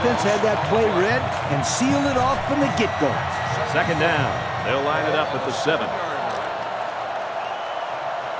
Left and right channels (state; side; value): identical; both; correlation 1.00